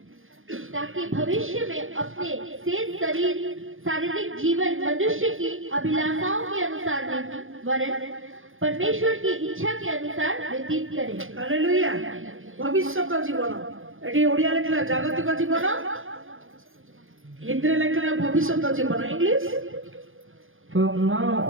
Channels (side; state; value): left; late; 0.59 ms